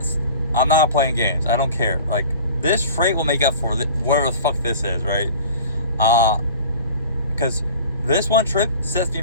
I'm not playing games. I don't care. Like, this freight will make up for whatever the fuck this is, right? Because this one trip sets me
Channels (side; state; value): both; inverted; correlation -0.42